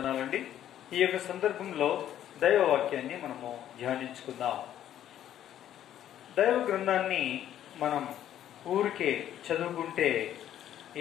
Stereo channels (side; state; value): right; quieter; 11.2 dB